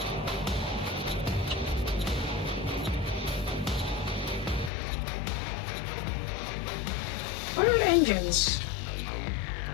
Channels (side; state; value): right; drops out; at 4.7 s